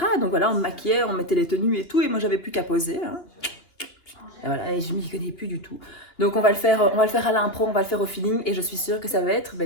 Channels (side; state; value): right; late; 2.9 ms